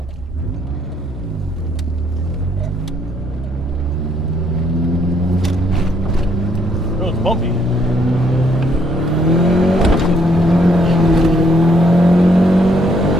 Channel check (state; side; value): normal; both; correlation 0.69